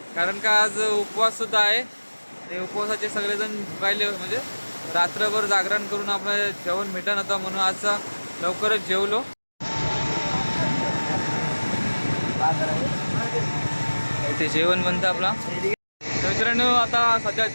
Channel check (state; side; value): inverted; both; correlation -1.00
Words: कारण का आज उपवाससुद्धा आहे. ते उपवासाचे सगळेजण भुकायले, म्हणजे रात्रभर जागरण करून आपलं जेवण भेटत नव्हतं, म्हणून आज लवकरच जेवलो. ते जेवण बनतं आपला. मित्रांनो आता सध्या